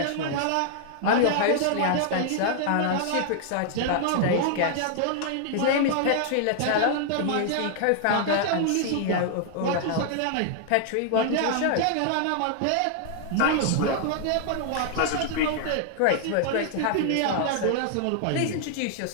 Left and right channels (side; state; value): both; different; correlation 0.00